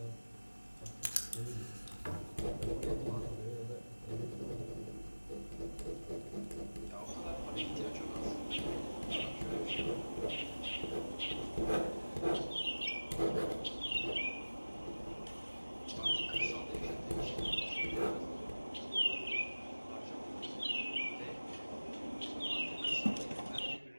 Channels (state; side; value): inverted; both; correlation -1.00